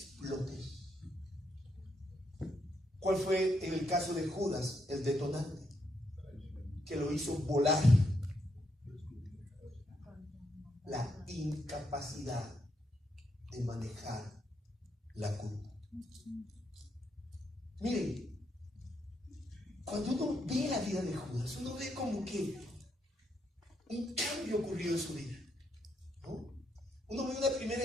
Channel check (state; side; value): normal; both; correlation 0.78